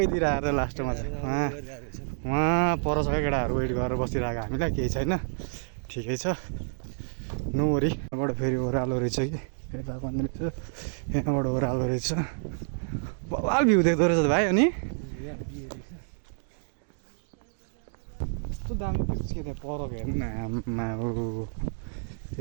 आएर लास्टमा चाहिँ वहाँ पर छ केटाहरू वेट गरेर बसिरहेको हामीलाई केही छैन ठिकै छ नोरी यहाँबाट फेरि ओह्रालो रहेछ कि यता पनि रहेछ यहाँबाट ओह्रालो रहेछ बवाल भ्यू देख्दो रहेछ भाइ अनि कस्तो दामी भ्यू के त्यहाँ परको हेर्नु न आम्मा हो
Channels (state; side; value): silent; left; digital silence